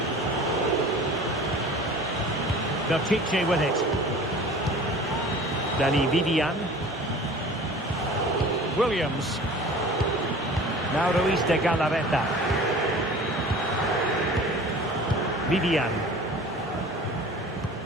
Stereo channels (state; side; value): normal; both; correlation 0.43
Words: Belchiche with it. Dani Vivian. Williams. Now Ruiz de Galarreta. Vivian.